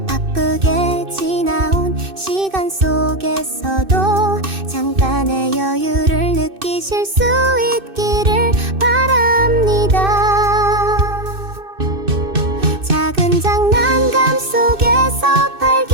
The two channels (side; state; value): left; late; 2.6 ms